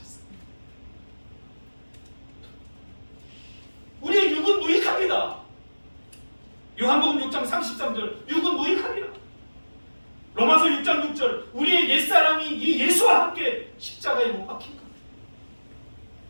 우리의 육은 무익합니다. 요한복음 6장 33절, 육은 무익합니다. 로마서 6장 6절, 우리의 옛사람이 이 예수와 함께 십자가에 못 박힌 겁니다.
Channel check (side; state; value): both; inverted; correlation -1.00